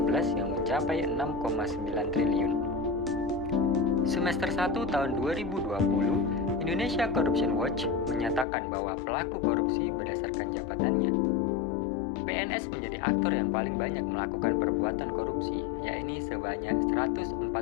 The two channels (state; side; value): drops out; right; at 8.5 s